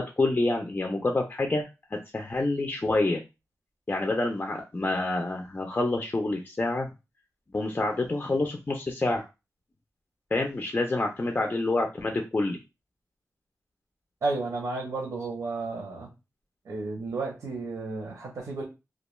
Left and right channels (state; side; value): normal; both; correlation 0.86